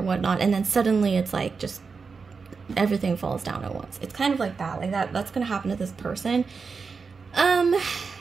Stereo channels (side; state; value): left; quieter; 5.0 dB